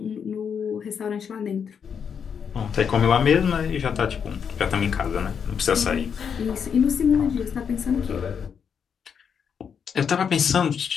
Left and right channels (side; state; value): right; quieter; 7.1 dB